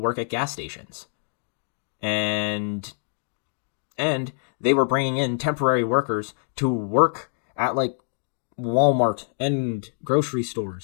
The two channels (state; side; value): silent; right; digital silence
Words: at gas stations. And they were bringing in temporary workers to work at like Walmart and grocery